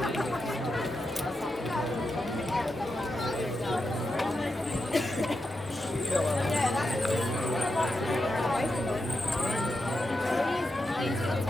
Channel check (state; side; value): normal; both; correlation 0.87